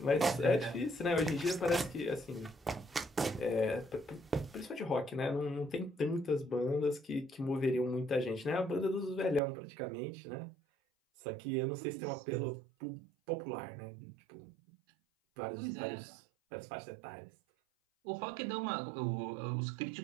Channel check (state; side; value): drops out; left; at 9.4 s